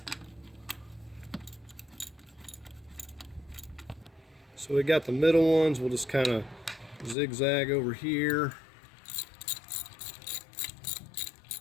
So we got the middle ones, we'll just kind of zigzag over here.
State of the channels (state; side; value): drops out; right; at 7.2 s